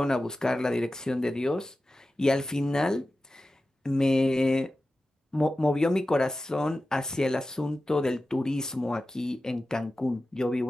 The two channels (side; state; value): both; normal; correlation 0.94